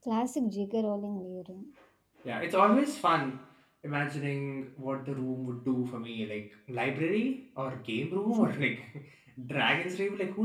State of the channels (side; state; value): both; identical; correlation 1.00